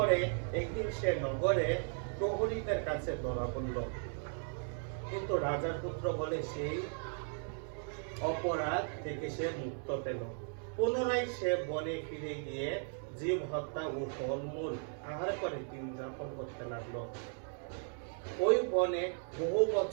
একদিন সে নগরে প্রহরীদের কাছে ধরা পড়ল, কিন্তু রাজার পুত্র বলে সেই অপরাধ থেকে সে মুক্ত পেল। পুনরায় সে বনে ফিরে গিয়ে জীব হত্যা ও ফলমূল আহার করে দিন যাপন করতে লাগলো। ওই বনে বহু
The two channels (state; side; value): silent; left; 53 dB below the other